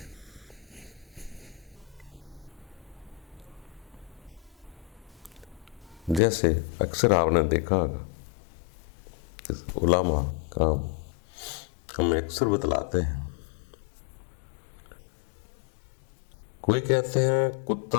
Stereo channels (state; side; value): drops out; right; at 6.2 s